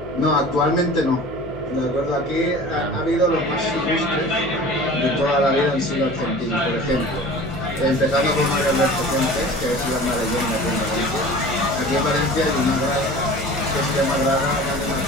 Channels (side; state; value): left; noise; hum, 15 dB below the sound